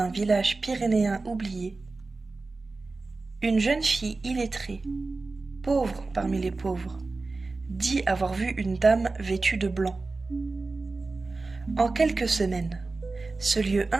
village pyrénéen oublié, une jeune fille illettrée, pauvre parmi les pauvres, dit avoir vu une dame vêtue de blanc. En quelques semaines, ce lieu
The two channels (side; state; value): left; quieter; 3.6 dB